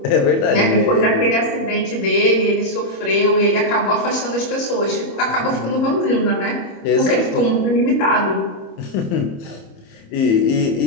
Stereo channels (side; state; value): right; late; 27 ms